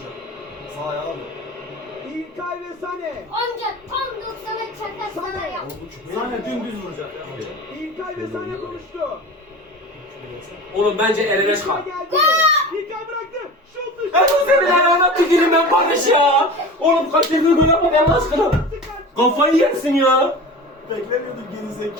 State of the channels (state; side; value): normal; both; correlation 0.34